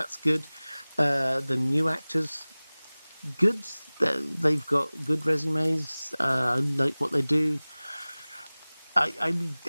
good. The new actors, good. They've got good resumes. I like what they do.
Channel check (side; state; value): both; inverted; correlation -1.00